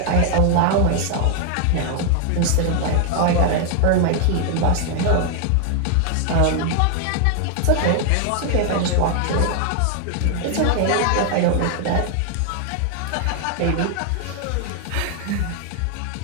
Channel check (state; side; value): different; both; correlation 0.00